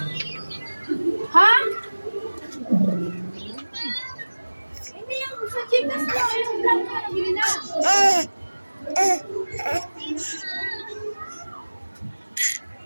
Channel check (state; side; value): inverted; both; correlation -1.00